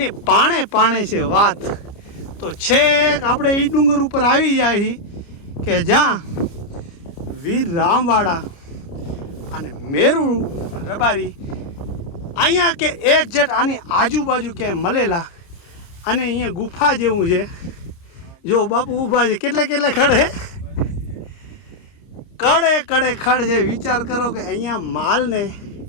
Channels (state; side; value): late; right; 29 ms